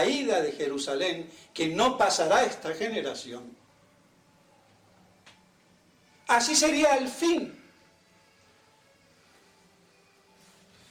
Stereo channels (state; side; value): identical; both; correlation 1.00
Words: de Jerusalén, que no pasará esta generación, así sería el fin.